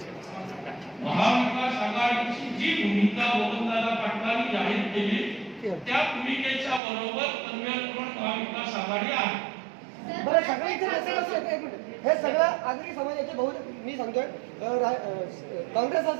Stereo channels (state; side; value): drops out; left; at 6.8 s